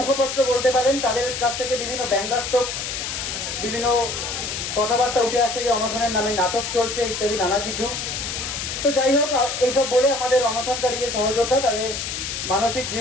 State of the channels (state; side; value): noise; left; hiss, 4 dB below the sound